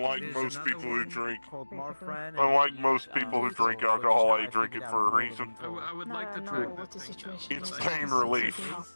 most people who drink, alcohol, I drink it for a reason. I would like to try It's pain relief.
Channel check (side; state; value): both; inverted; correlation -1.00